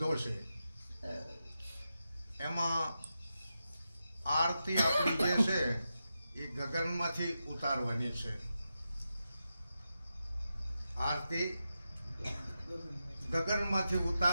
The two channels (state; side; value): inverted; both; correlation -0.89